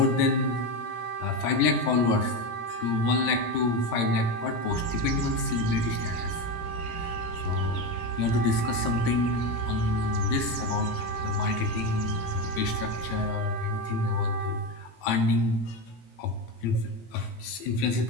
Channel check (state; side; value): late; right; 17 ms